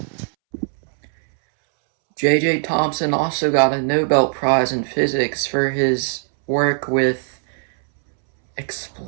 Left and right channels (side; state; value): left; silent; 66 dB below the other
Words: J.J. Tomson also got a Nobel Prize in physics for his work with